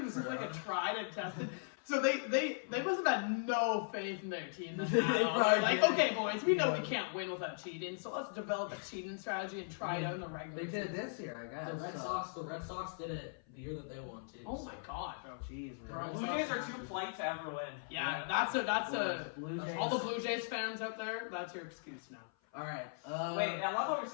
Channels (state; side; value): silent; right; 52 dB below the other